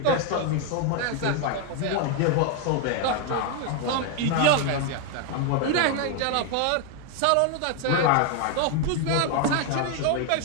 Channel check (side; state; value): both; different; correlation 0.01